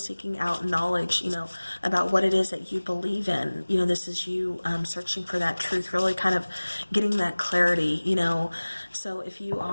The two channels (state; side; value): inverted; both; correlation -1.00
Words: out knowledge, about what it is that you believe in. This is you searching for that truth, really kind of getting that clarity, So if you